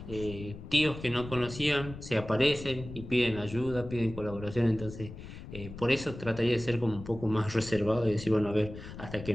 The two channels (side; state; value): left; noise; rumble, 12 dB below the sound